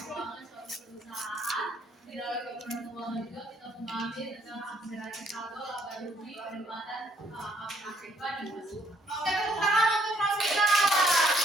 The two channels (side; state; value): both; normal; correlation 0.67